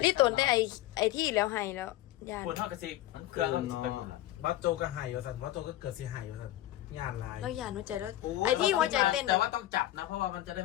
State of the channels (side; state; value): right; quieter; 14.9 dB